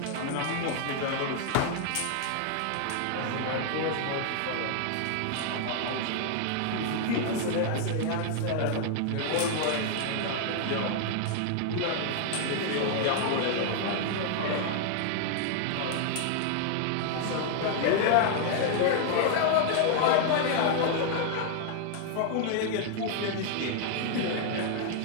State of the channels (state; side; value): different; both; correlation 0.00